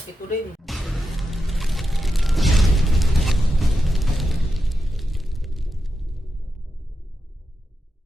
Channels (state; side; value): normal; both; correlation 0.88